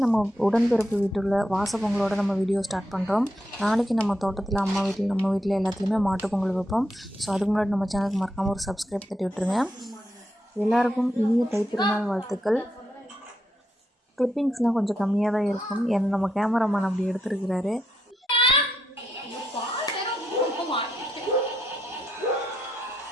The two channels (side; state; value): both; normal; correlation 0.82